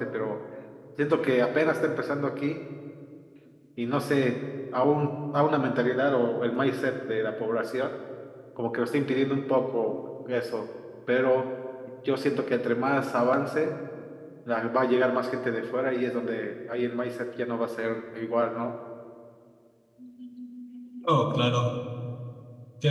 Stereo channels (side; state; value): both; identical; correlation 1.00